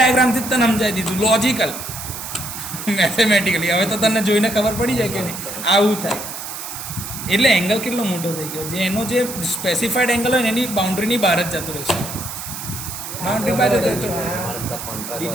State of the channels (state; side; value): noise; right; hiss, 8 dB below the sound